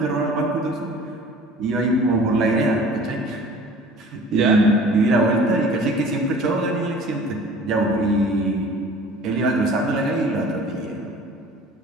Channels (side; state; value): both; normal; correlation 0.46